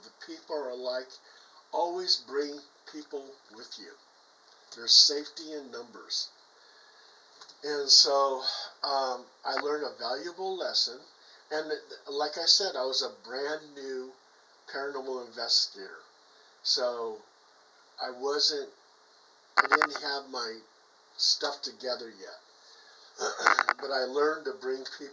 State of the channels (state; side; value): identical; both; correlation 1.00